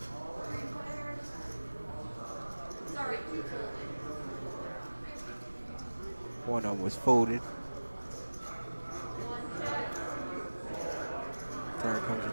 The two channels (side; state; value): both; inverted; correlation -1.00